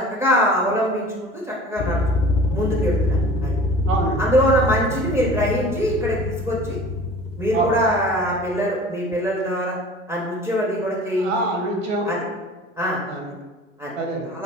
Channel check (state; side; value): normal; both; correlation 0.43